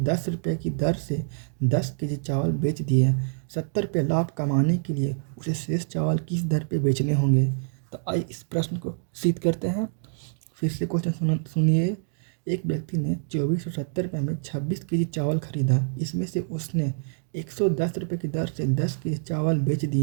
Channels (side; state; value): left; silent; digital silence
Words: रुपये की दर से 10 केजी चावल बेच दिए। 70 रुपये लाभ कमाने के लिए उसे शेष चावल किस दर पे बेचने होंगे। तो आइए इस प्रश्न को सिद्ध करते हैं। फिर से क्वेश्चन सुनिए। एक व्यक्ति ने 2470 रुपये में 26 केजी चावल खरीदा। इसमें से उसने 110 रुपये की दर से 10 केजी चावल बेच